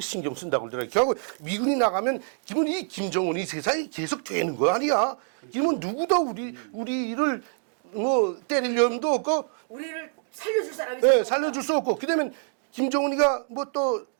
신경 쓴다고 그러더라고요. 결국 미군이 나가면 기본 이 김정은이 세상이 계속 되는 거 아니야. 기본 누구도 우리를 뭐 때리려면도 없고 우리를 살려줄 사람이 예, 살려줄 수 없고 그다음에 김정은이가 뭐 또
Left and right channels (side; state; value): left; silent; 61 dB below the other